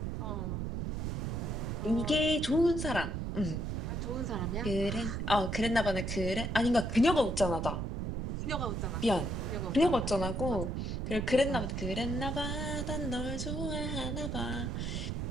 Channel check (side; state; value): right; noise; rumble, 2 dB below the sound